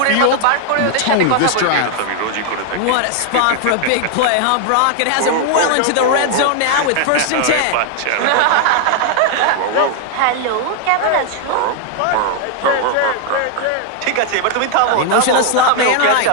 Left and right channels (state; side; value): different; both; correlation 0.00